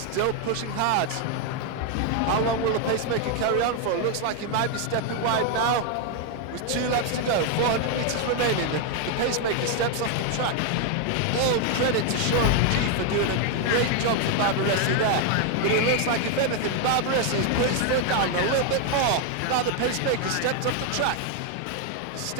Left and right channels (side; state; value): both; different; correlation 0.00